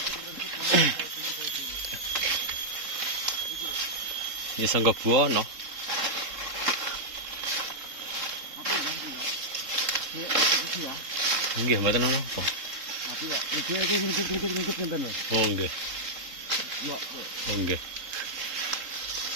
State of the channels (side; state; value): left; late; 3.7 ms